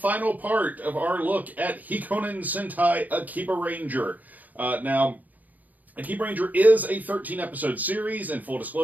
part of our look at Hikonin Sentai Akibaranger. Now, Akibaranger is a 13-episode series. In full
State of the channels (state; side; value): late; left; 0.080 ms